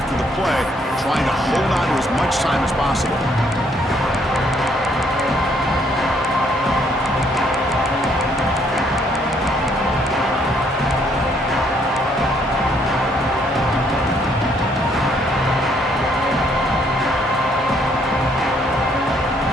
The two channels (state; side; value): normal; both; correlation 0.68